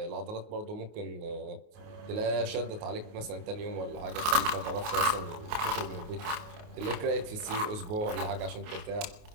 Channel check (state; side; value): late; left; 28 ms